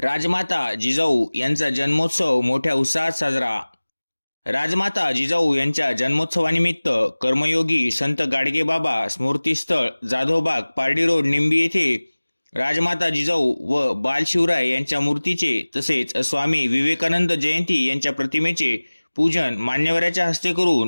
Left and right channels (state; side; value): inverted; both; correlation -1.00